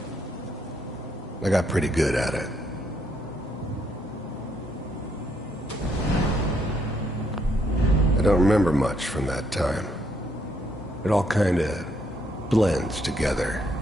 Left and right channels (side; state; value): both; normal; correlation 0.73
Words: I got pretty good at it. I don't remember much from that time. It all kinda blends together.